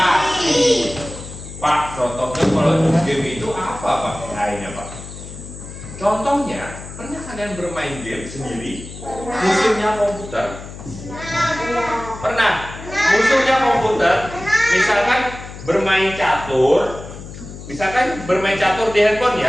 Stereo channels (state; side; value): noise; left; hum, 13 dB below the sound